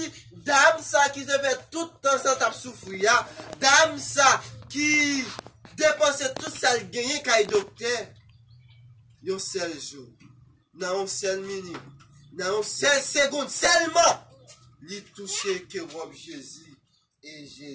dame ça qui devait tout le temps sans souffrir, dame ça qui dépensait tout ça le gagné quand il docteur, un seul jour, dans une seule minute, dans une seule seconde, seulement, il touchait que robe Jésus, et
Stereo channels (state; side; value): identical; both; correlation 1.00